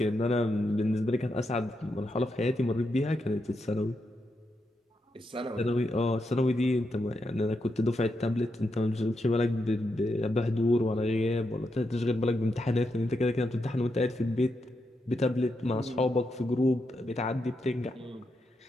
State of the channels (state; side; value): normal; both; correlation 0.84